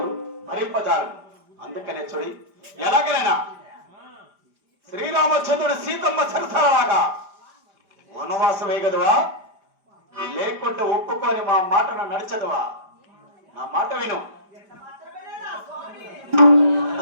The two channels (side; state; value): left; late; 5.0 ms